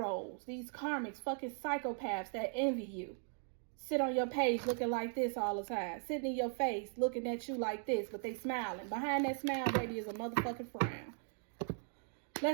These karmics, fucking psychopaths that envy you. Sit on your page looking like this all the time. Sitting in your face looking at you like this, but they smiling. Behind that smile, baby, is a motherfucking frown.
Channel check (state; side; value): silent; left; 52 dB below the other